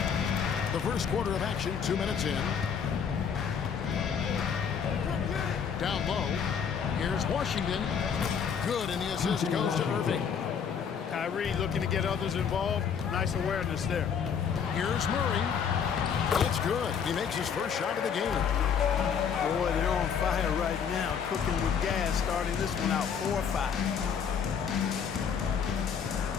The first quarter of action, 2 minutes in. Down low, here's Washington. Good, and the assist goes to Irving. Kyrie looking to get others involved. Nice awareness there. Here's Murray. It's good. He makes his first shot of the game. Boy, they're on fire right now, cooking with gas, starting this one out 4-5.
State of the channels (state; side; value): quieter; right; 7.1 dB